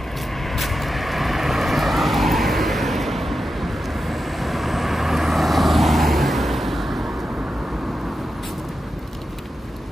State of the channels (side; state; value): both; normal; correlation 0.90